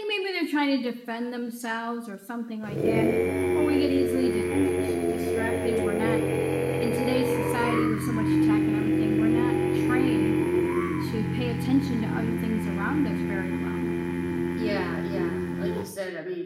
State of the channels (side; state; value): both; identical; correlation 1.00